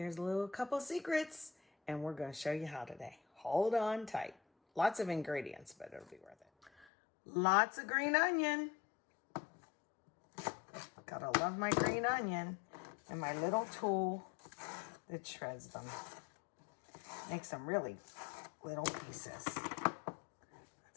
a little couple secrets, and we're going to show you how today. Hold on tight. Lots of ingredients, but it'll be worth it. Lots of green onion. Gotta love my green onion. And my little tool that shreds them. Makes them really little pieces.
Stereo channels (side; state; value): right; drops out; at 6.9 s